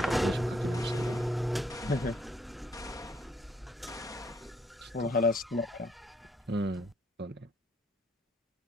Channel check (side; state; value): both; normal; correlation 0.68